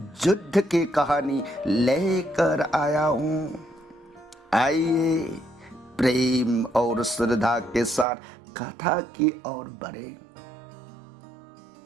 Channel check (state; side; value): drops out; left; at 8.1 s